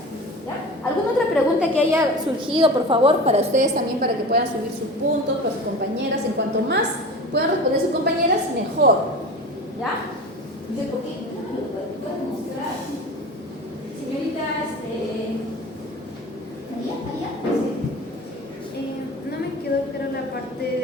¿Ya? ¿Alguna otra pregunta que haya surgido, por favor, para ustedes también, para que puedan subir sus puntos para sus compañeras? En cuanto más puedan responder sus compañeras, mejor. ¿Ya? Dice, ¿por qué? No me lo puedo mostrar. Señorita, allá. No me quedó clara la parte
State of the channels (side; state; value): both; normal; correlation 0.34